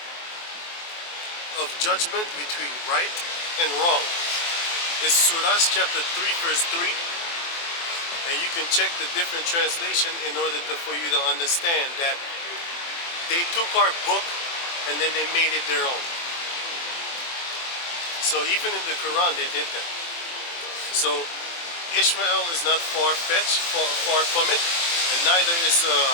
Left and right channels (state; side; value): late; right; 23 ms